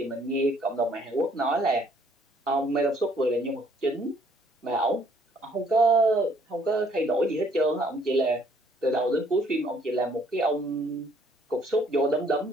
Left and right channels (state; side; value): normal; both; correlation 0.63